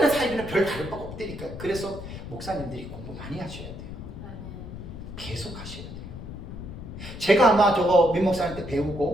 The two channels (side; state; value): left; noise; rumble, 10 dB below the sound